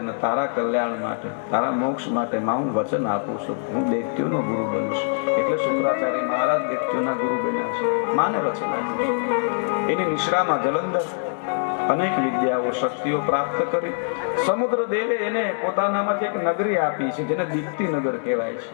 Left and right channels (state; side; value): silent; right; digital silence